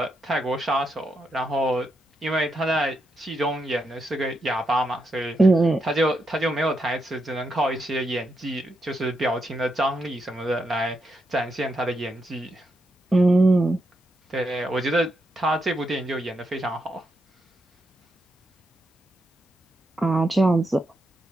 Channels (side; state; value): both; normal; correlation 0.83